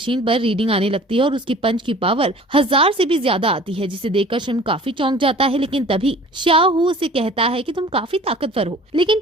पर रीडिंग आने लगती है और उसकी पंच की पावर 1000 से भी ज्यादा आती है, जिसे देखकर श्रिम्प काफी चौंक जाता है। लेकिन तभी शाओहू उसे कहता है कि तुम काफी ताकतवर हो, लेकिन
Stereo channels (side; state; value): both; normal; correlation 0.47